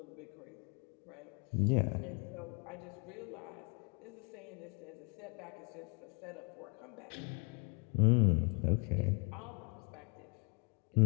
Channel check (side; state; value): right; quieter; 34.3 dB